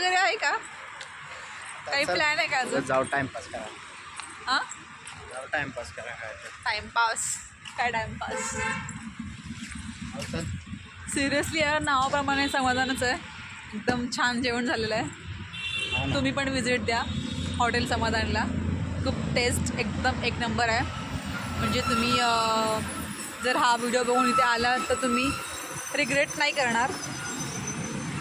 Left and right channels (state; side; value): identical; both; correlation 1.00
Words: आहे का? काही प्लॅन आहे का अजून? जाऊ टाइमपास करा. हां जाऊ टाइमपास करा. काय टाइमपास काय टाइमपास तर सिरियसली यार नावाप्रमाणे समाधानच आहे. एकदम छान जेवण झालेलं आहे. तुम्ही पण विजिट द्या हॉटेल समाधानला. खूप टेस्ट एकदम एक नंबर आहे. म्हणजे तुम्ही जर हा व्हिडिओ बघून इथे आला तर तुम्ही रिग्रेट नाही करणार.